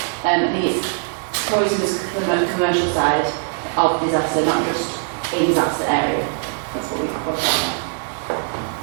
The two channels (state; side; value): silent; left; 65 dB below the other